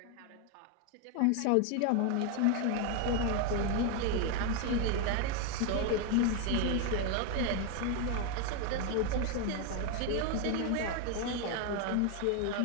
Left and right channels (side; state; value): both; different; correlation 0.01